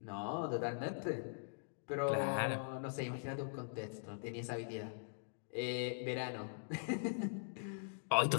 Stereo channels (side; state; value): right; silent; digital silence